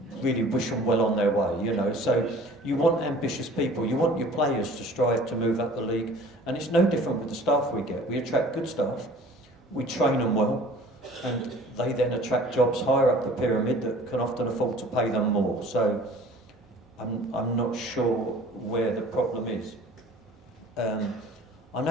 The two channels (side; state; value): both; normal; correlation 0.48